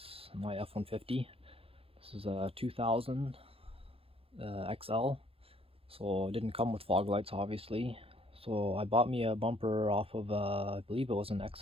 on my F150. This is a 2000 XL, so it didn't come with fog lights obviously. So I bought me a bumper off of, I believe it was an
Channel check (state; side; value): late; left; 0.28 ms